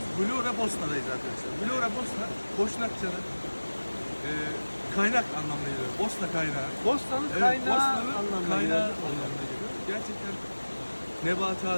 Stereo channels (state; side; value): inverted; both; correlation -1.00